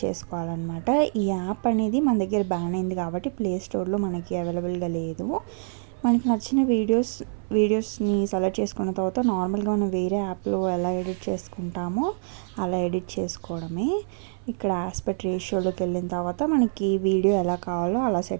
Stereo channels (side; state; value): left; silent; 61 dB below the other